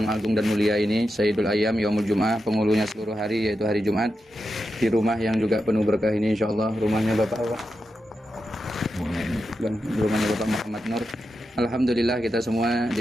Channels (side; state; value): both; normal; correlation 0.88